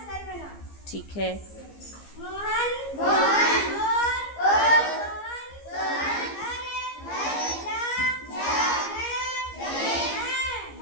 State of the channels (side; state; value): right; late; 15 ms